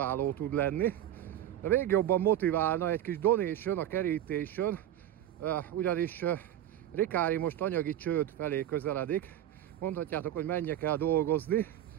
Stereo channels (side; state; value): left; quieter; 12.0 dB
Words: tud lenni. De még jobban motiválna egy kis donation, a kerítésen, ugyanis Rikári most anyagi csőd felé közeledik. Mondhatjátok, hogy menjek el dolgozni.